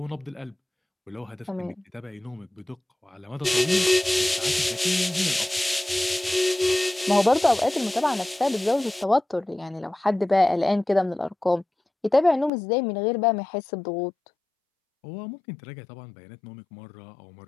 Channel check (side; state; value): right; drops out; at 12.5 s